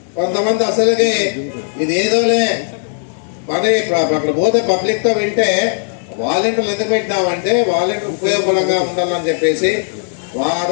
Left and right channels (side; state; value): right; silent; digital silence